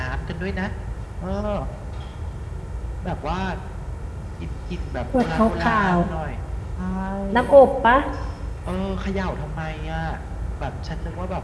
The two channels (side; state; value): both; identical; correlation 1.00